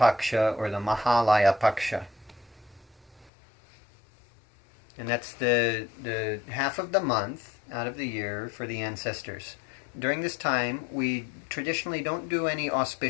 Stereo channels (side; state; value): right; drops out; at 3.3 s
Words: or the Mahalaya Paksha. And that's the half of the month out of the year for the ancestors. During this time, we traditionally don't do any